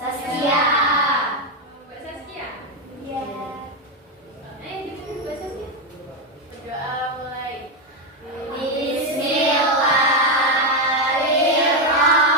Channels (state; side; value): normal; both; correlation 0.06